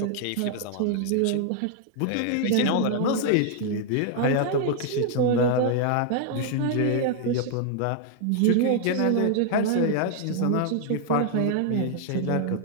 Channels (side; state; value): both; different; correlation 0.00